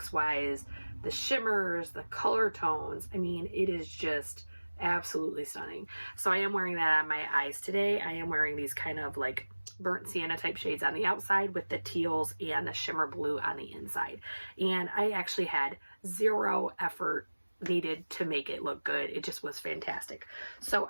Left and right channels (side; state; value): both; inverted; correlation -1.00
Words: the shimmers, the color tones. I mean, it is just absolutely stunning. So I am wearing that on my eyes today. I am wearing these kind of like burnt sienna type shades on the outside with the teals and the shimmer blue on the inside. And I actually had 0 effort needed to make it look good. It just was fantastic. So